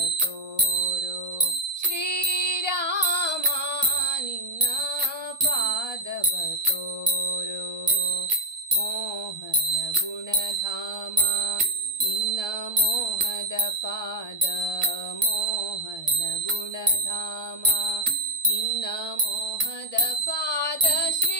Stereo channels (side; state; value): left; late; 1.2 ms